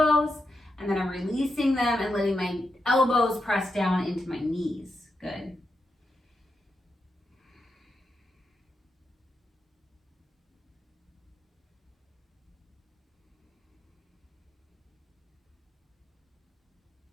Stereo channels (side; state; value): both; normal; correlation 0.86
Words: and then I'm releasing them and letting my elbows press down into my knees. Good.